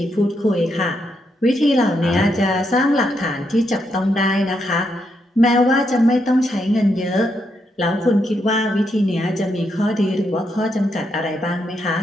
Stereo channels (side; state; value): both; normal; correlation 0.80